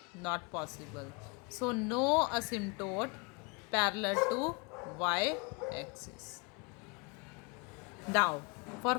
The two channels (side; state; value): right; quieter; 29.6 dB